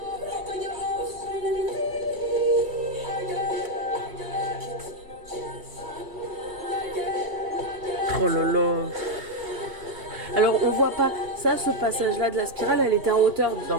Oh là là. Alors on voit pas ça, ce passage là de la spirale, elle était en hauteur dans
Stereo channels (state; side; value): late; left; 2.7 ms